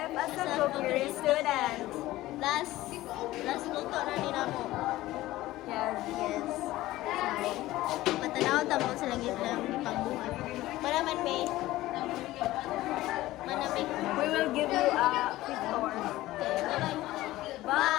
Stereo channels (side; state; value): right; quieter; 16.7 dB